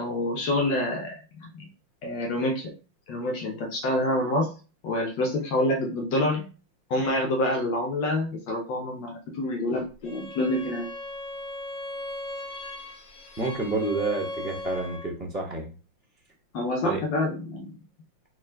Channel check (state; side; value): late; right; 5.7 ms